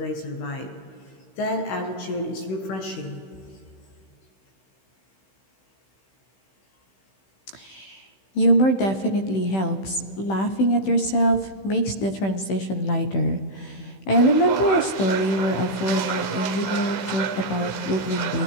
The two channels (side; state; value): right; late; 16 ms